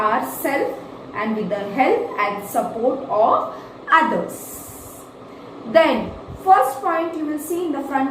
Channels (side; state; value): both; identical; correlation 1.00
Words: and with the help and support of others. Then, first point you will see in the